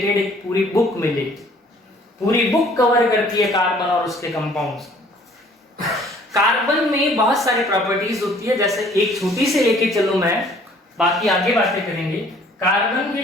एक पूरी बुक मिलेगी। पूरी बुक कवर करती है कार्बन और उसके कंपाउंड्स। कार्बन में बहुत सारी प्रॉपर्टीज होती है, जैसे एक छोटी से लेके चलो मैं, बाकी आगे बातें करेंगे। कार्बन की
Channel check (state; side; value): normal; both; correlation 0.56